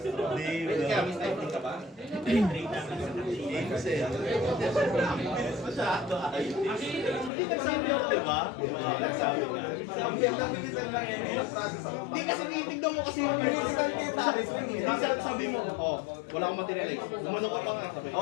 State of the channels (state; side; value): drops out; right; at 7.3 s